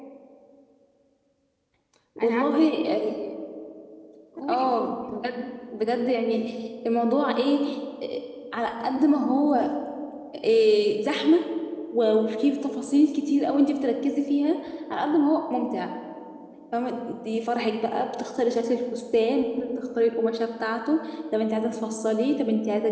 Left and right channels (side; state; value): both; identical; correlation 1.00